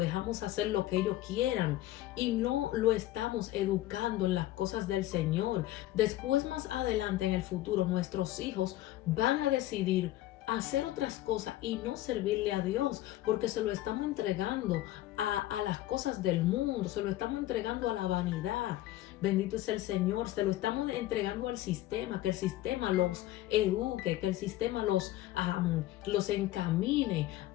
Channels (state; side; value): quieter; right; 15.2 dB